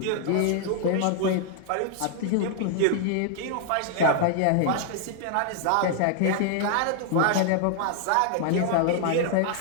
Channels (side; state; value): both; different; correlation -0.01